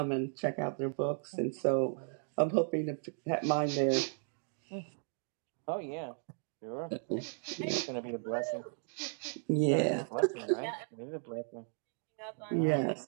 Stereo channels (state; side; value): silent; left; 54 dB below the other